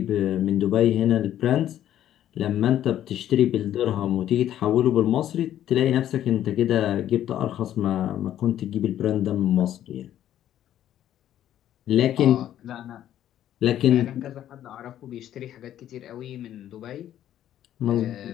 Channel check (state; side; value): quieter; right; 11.6 dB